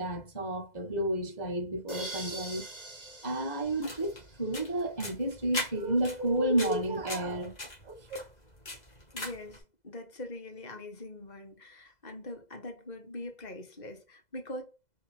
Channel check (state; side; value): late; right; 2.0 ms